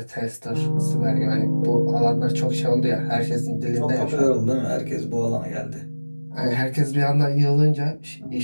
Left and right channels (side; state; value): both; inverted; correlation -1.00